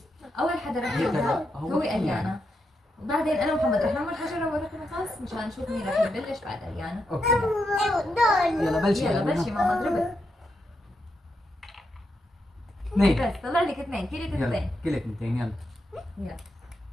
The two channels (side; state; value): both; normal; correlation 0.83